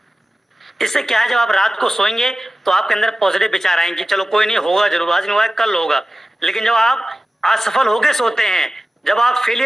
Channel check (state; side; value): normal; both; correlation 0.95